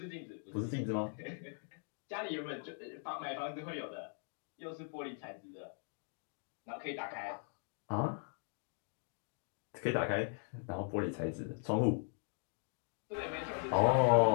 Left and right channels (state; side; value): silent; right; 52 dB below the other